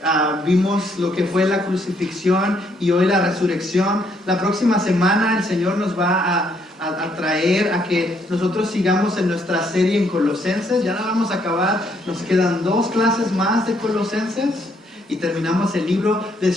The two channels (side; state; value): both; normal; correlation 0.71